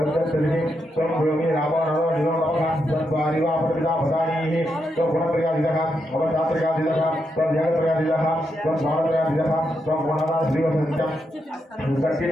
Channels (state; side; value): normal; both; correlation 0.82